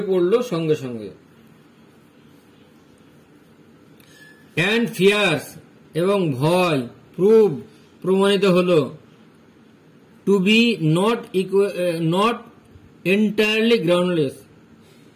পড়ল সঙ্গে সঙ্গে। অ্যান্ড ফিয়ার্স, এবং ভয়। প্রমাণিত হল। To be not entirely groundless,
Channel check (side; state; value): both; identical; correlation 1.00